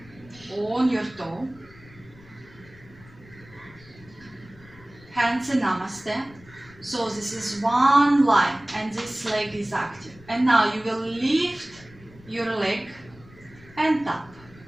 on your toe. Hands in Namaste. So this is one line and this leg is active. And now you will lift your leg and tap.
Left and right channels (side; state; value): left; noise; rumble, 23 dB below the sound